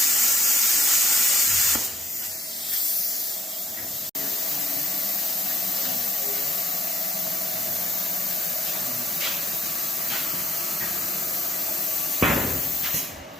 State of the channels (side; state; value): both; normal; correlation 0.71